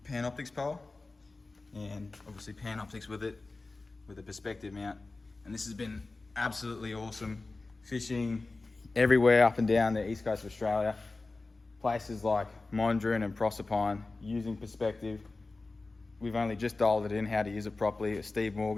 Panoptix pole, and obviously Panoptix with it, with a perspective mount. And this has been absolutely awesome. Fishing everywhere up and down the east coast of Australia. Places like Mondrian and Proserpine, using perspective. We've only just dialed it in, how to use it properly. Steve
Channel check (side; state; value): right; quieter; 3.5 dB